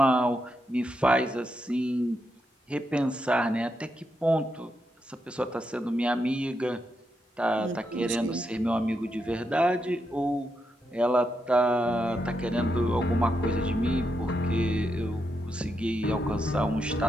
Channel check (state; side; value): normal; both; correlation 0.83